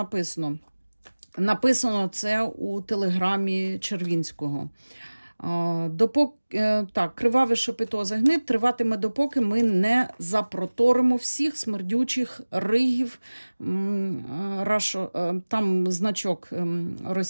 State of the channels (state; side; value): inverted; both; correlation -1.00